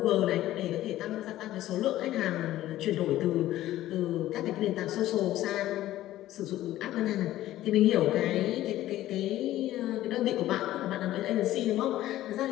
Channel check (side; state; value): right; quieter; 14.5 dB